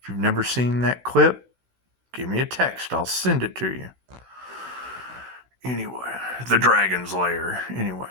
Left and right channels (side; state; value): left; late; 16 ms